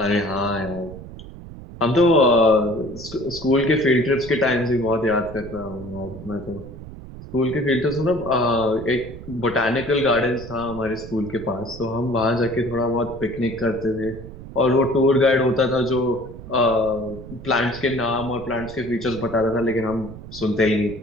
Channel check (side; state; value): right; noise; rumble, 14 dB below the sound